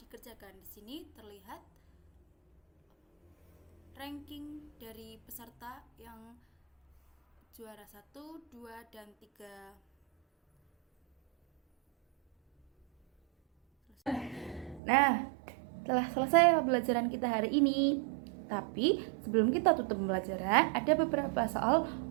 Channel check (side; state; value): left; drops out; at 14.8 s